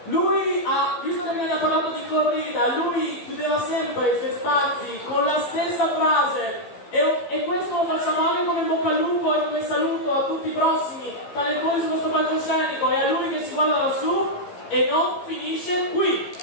Lui ha visto che viene parlato di corrida, lui chiudeva sempre i suoi spazi con la stessa frase e questo lo facciamo anche come in bocca al lupo e come saluto a tutti i prossimi talentuosi su questo palcoscenico e a lui che ci guarda lassù e non finisce qui.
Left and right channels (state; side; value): late; right; 14 ms